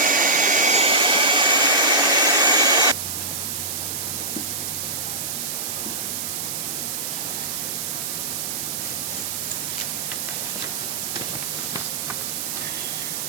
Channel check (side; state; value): right; noise; hiss, 3 dB below the sound